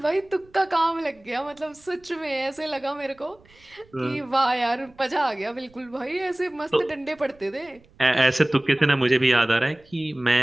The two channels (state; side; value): noise; right; rumble, 29 dB below the sound